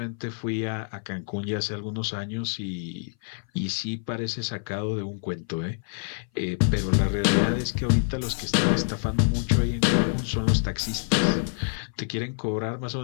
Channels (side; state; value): right; silent; 58 dB below the other